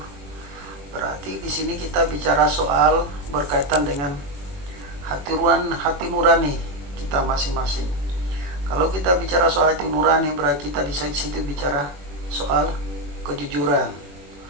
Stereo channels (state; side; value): late; left; 21 ms